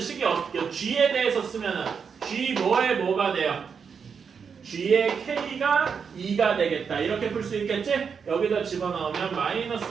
어떻게 g에 대해서 쓰면은 g 뭐에 뭐가 돼요? g의 k가 2가 되겠다. 이렇게 풀 수 있겠지? 여기다 집어넣으면 마이너스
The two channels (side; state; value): left; quieter; 6.3 dB